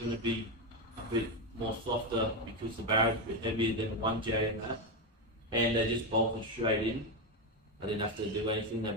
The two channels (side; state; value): both; normal; correlation 0.10